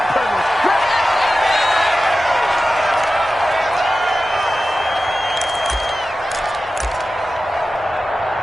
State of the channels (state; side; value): normal; both; correlation 0.94